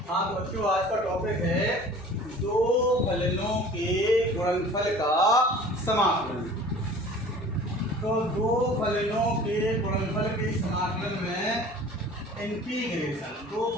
हाँ तो बच्चों, आज का टॉपिक है दो फलनों के गुणनफल का समाकलन। तो दो फलनों के गुणनफल के समाकलन में इंटीग्रेशन, दो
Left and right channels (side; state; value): both; normal; correlation 0.44